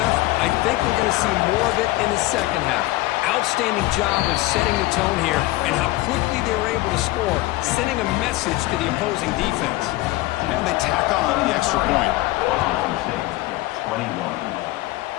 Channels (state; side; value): quieter; right; 18.8 dB